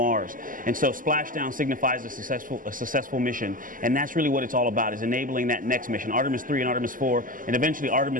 And so splashdown signifies a successful mission. And that's really what it's all about, is enabling that next mission, Artemis 3 and Artemis 4, and eventually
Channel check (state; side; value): late; left; 0.40 ms